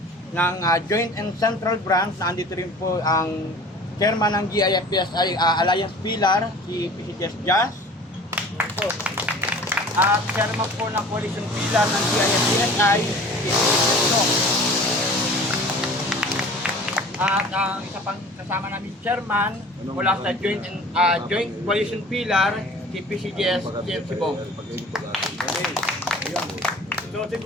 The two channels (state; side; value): normal; both; correlation 0.44